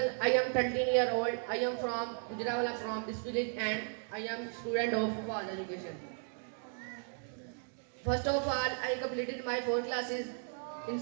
I am 13-year-old. I am from Gujarat, from this village, and I am student of Faz Education. First of all, I completed my 4 classes in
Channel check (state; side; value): silent; left; 54 dB below the other